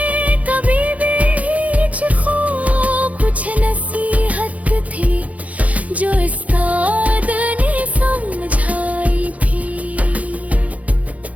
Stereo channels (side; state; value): left; late; 0.069 ms